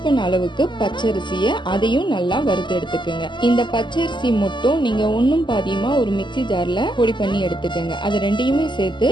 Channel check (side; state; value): right; late; 0.22 ms